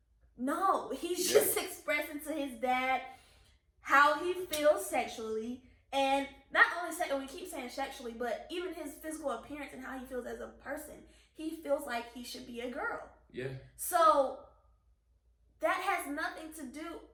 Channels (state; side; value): identical; both; correlation 1.00